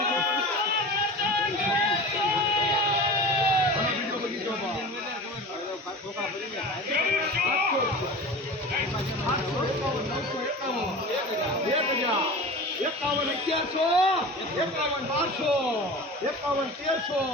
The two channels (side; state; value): both; normal; correlation 0.34